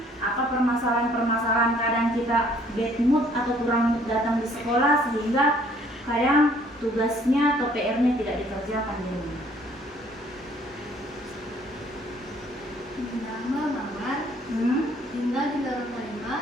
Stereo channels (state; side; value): normal; both; correlation 0.60